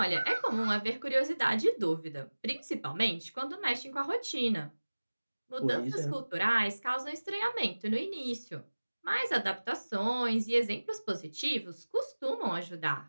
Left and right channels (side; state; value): both; inverted; correlation -1.00